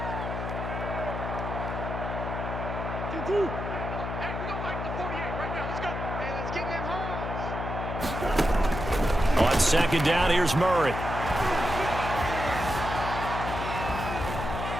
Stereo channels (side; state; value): left; noise; hum, 5 dB below the sound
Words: On 2nd down, here's Murray.